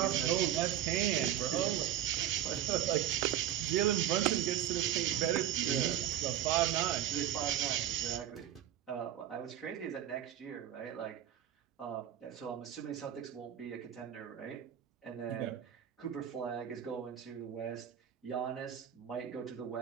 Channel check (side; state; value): left; quieter; 11.3 dB